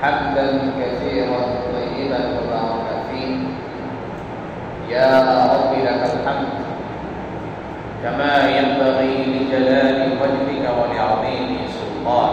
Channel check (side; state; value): both; identical; correlation 1.00